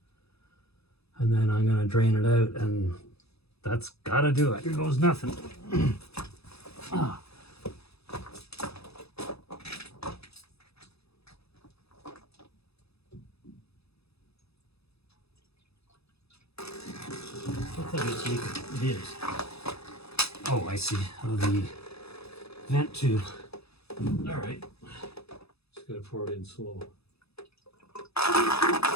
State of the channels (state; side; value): late; right; 0.78 ms